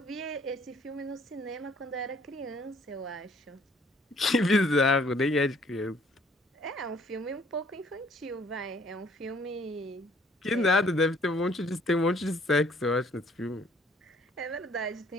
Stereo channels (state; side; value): normal; both; correlation 0.60